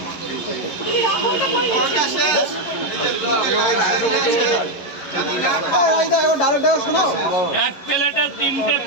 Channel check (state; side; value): late; right; 11 ms